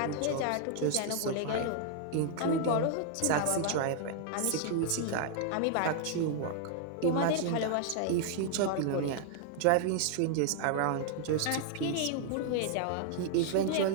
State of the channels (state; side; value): different; both; correlation 0.00